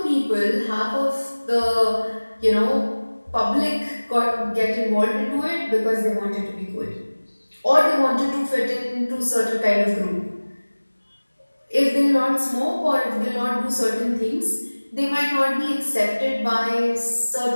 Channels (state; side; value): inverted; both; correlation -1.00